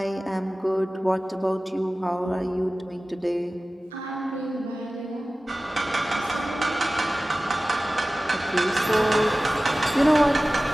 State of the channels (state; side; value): normal; both; correlation 0.97